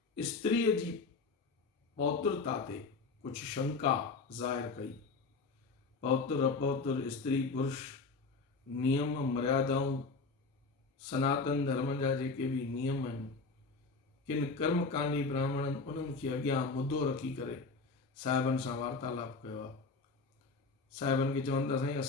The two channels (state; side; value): quieter; right; 4.1 dB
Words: स्त्रीअ जी पौत्रता ते कुछ शंका ज़ाहिर कई। पौत्र अपौत्र, स्त्री पुरुष, नियम मर्यादाऊं, सनातन धर्म जा जेके भी नियम आहिनि, किन कर्मकांडी ब्राह्मणनि उन्हनि खे अॻियां मुद्दो रखी करे साहिबनि सां वार्तालाप कयो आहे। साहिबनि खे चवनि था साईं